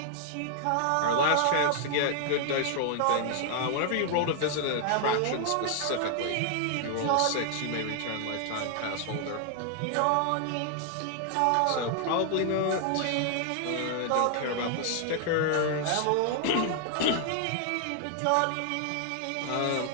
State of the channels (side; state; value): both; different; correlation 0.00